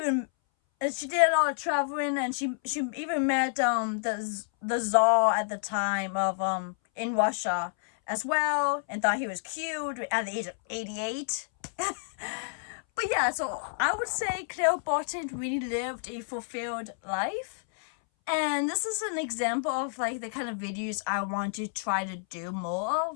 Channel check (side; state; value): right; silent; 58 dB below the other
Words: a lot of traveling, and she even met the Tsar at the time of in Russia as well, and thought he was cute at the age of 88. But yeah, so I would say Clara Barton really lived a fulfilled life, and this is an example of like the kind of videos I want to try to do more